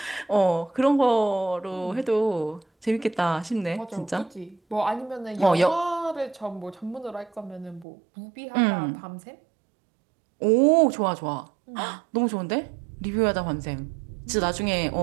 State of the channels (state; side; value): drops out; left; at 7.9 s